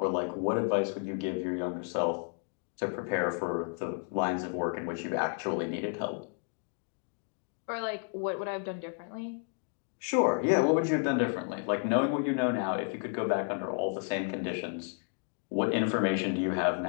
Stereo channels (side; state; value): right; quieter; 39.3 dB